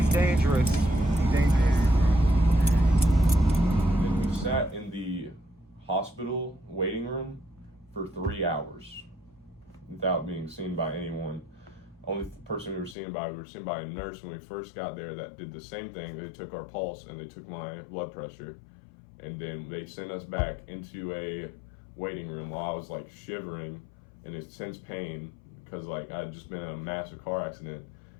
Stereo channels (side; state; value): right; drops out; at 13.0 s